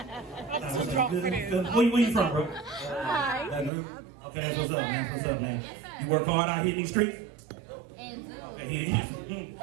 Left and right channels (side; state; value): left; drops out; at 3.7 s